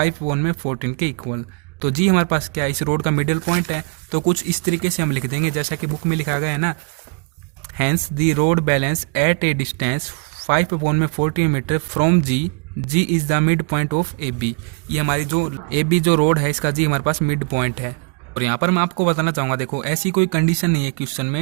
के इक्वल। तो जी हमारे पास क्या है, इस रोड का मिडिल पॉइंट है, तो कुछ इस तरीके से हम लिख देंगे जैसा कि बुक में लिखा गया है ना, hence the rod balance at a distance 5/14 metre from G is the mid point of A B. ये हमारी जो ए बी जो रोड है इसका जी हमारे पास मिड पॉइंट है। और यहाँ पर मैं आपको बताना चाहूँगा, देखो ऐसी कोई कंडीशन नहीं है क्वेश्चन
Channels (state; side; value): quieter; left; 33.4 dB